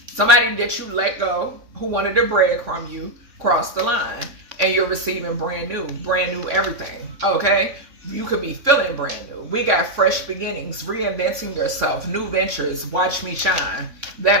Somebody that you let go who wanted to breadcrumb you, cross the line. And you're receiving brand new everything, okay? You could be feeling brand new. We got fresh beginnings, reinventing yourself, new ventures, watch me shine.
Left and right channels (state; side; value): late; left; 3.6 ms